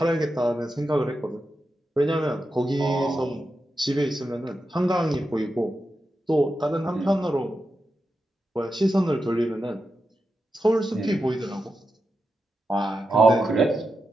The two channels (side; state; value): both; normal; correlation 0.88